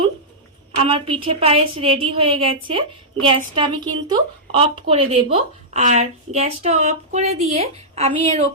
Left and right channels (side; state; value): both; normal; correlation -0.12